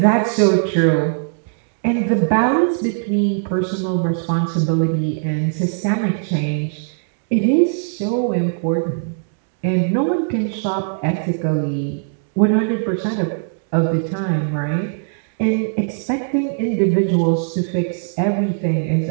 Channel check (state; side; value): silent; left; digital silence